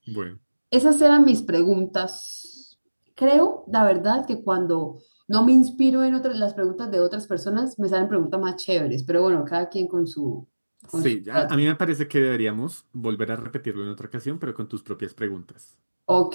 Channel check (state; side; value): inverted; both; correlation -1.00